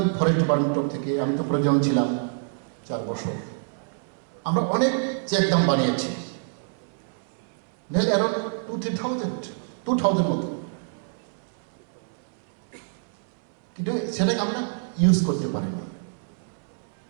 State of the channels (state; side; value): silent; left; 61 dB below the other